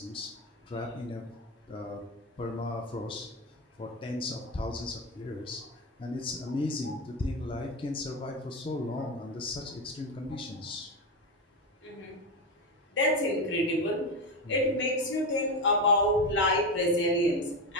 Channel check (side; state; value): both; normal; correlation 0.16